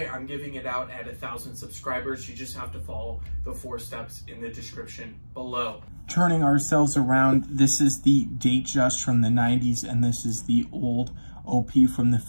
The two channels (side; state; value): both; inverted; correlation -1.00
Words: I'm giving it out at 1,000 subscribers. You just have to follow the 4 steps in the description below. Turning ourselves around, this is the Datejust from the 90s, and this is the old OP from the